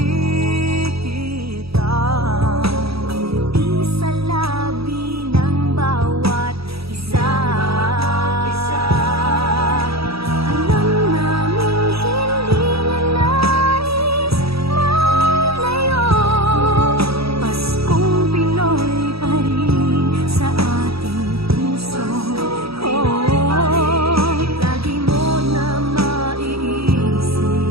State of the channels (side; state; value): left; late; 0.77 ms